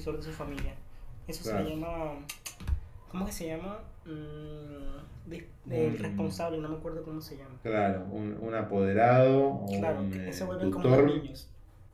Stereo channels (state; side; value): identical; both; correlation 1.00